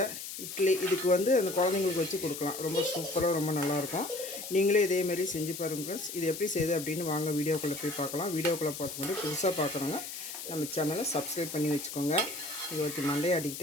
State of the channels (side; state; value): left; noise; hiss, 8 dB below the sound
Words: இட்லி இதுக்கு வந்து அந்த குழந்தைங்களுக்கு வச்சு கொடுக்கலாம். ரொம்ப சூப்பராக ரொம்ப நல்லாயிருக்கும். நீங்களே இதேமாரி செஞ்சு பாருங்கள் ஃப்ரெண்ட்ஸ். இது எப்படி செய்யுது அப்படின்னு வாங்க வீடியோக்குள்ளே போய் பார்க்கலாம். வீடியோக்குள்ளே பார்த்துக்கொண்டு புதுசாக பார்க்குறோங்க நம்ம சேனலை சப்ஸ்கிரைப் பண்ணி வச்சுக்கோங்க. இது ஒருத்தி மண்டையை